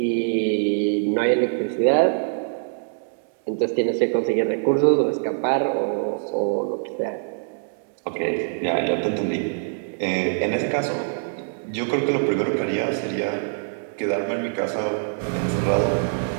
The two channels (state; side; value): silent; left; digital silence